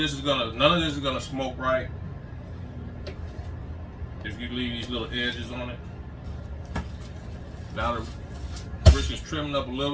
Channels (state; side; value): identical; both; correlation 1.00